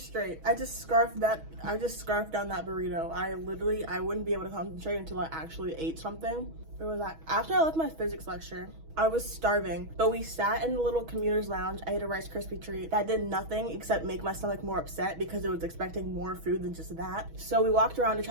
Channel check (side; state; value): left; late; 6.2 ms